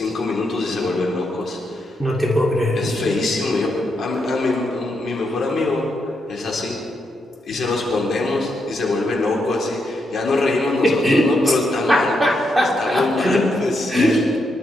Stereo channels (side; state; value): both; normal; correlation 0.81